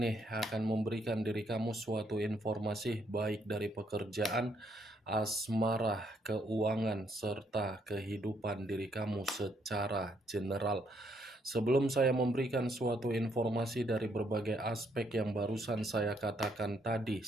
akan memberikan diri kamu suatu informasi baik dari pekerjaan, asmara, keuangan, serta kehidupan diri kamu secara general. Sebelum saya memberikan suatu informasi dari berbagai aspek yang barusan saya katakan tadi,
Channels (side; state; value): both; normal; correlation 0.72